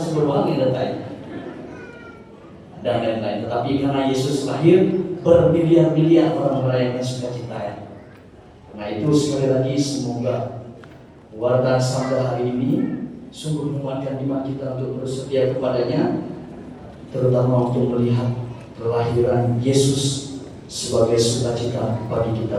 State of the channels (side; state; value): both; identical; correlation 1.00